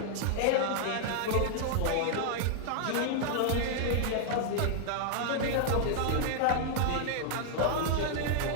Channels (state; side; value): different; both; correlation 0.00